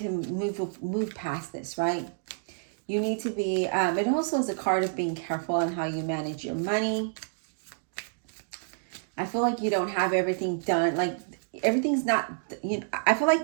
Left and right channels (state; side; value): silent; left; digital silence